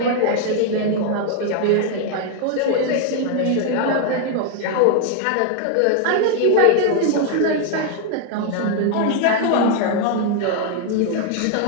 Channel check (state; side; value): different; both; correlation 0.00